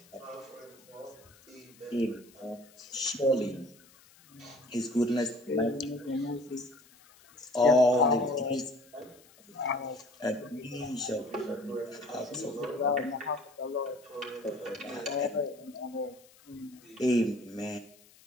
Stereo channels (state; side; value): noise; left; hiss, 26 dB below the sound